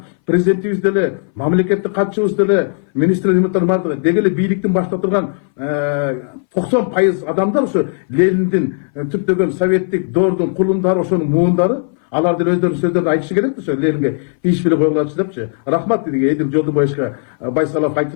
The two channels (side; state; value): right; silent; 63 dB below the other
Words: президентибиз деле, мамлекеттик катчыбыз деле, министрлер бардыгы деги эле бийликтин башында турган 90% адамдар ошо Лениндин түптөгөн советтик доордун кулундары, ошонун муундары. Алар деле өздөрүнүн сөздөрүн айтышы керек да, ошо Ленинге тийишпей койгулачы депчи. Рахмат деди Эдил Жолдубаевичке Байсалов